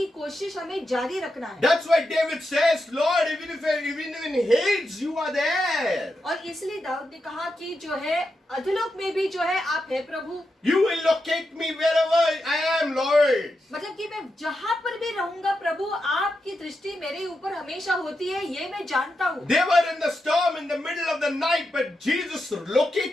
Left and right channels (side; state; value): both; normal; correlation 0.87